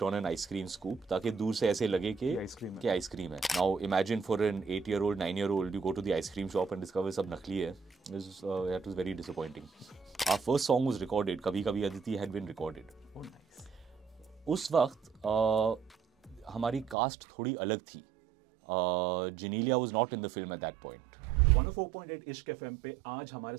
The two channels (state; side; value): drops out; left; at 16.9 s